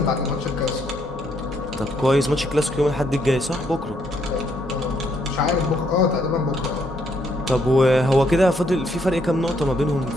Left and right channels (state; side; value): normal; both; correlation 0.72